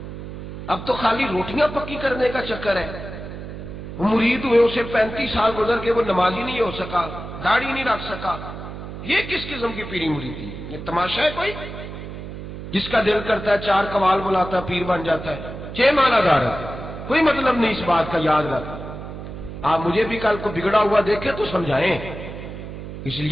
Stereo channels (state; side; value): noise; right; hum, 10 dB below the sound